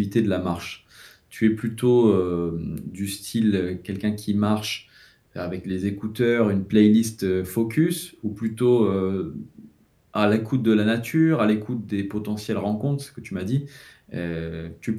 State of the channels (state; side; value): identical; both; correlation 1.00